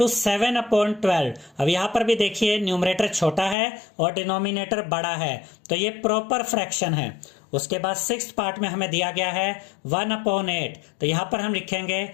7/12। अब यहां पर भी देखिए न्यूमरेटर छोटा है और डिनोमिनेटर बड़ा है, तो ये प्रॉपर फ्रैक्शन है। उसके बाद सिक्स्थ पार्ट में हमें दिया गया है 1/8। तो यहां पर हम लिखेंगे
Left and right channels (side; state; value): right; drops out; at 3.6 s